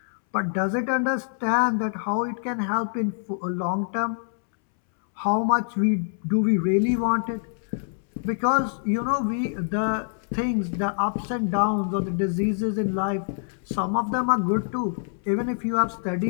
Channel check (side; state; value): right; silent; 61 dB below the other